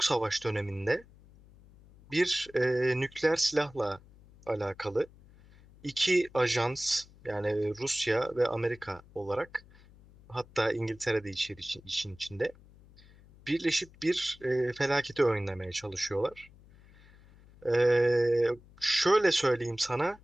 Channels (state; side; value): noise; left; hum, 24 dB below the sound